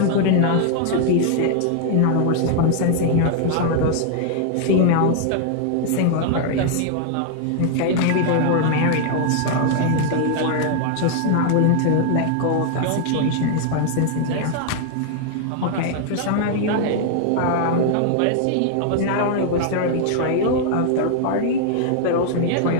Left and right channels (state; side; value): different; both; correlation 0.00